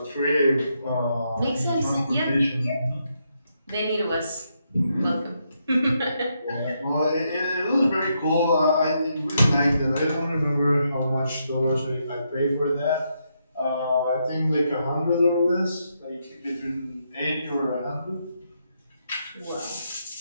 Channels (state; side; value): inverted; both; correlation -0.80